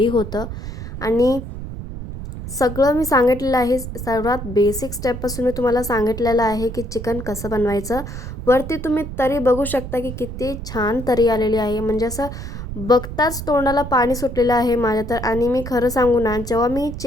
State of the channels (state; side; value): noise; right; rumble, 8 dB below the sound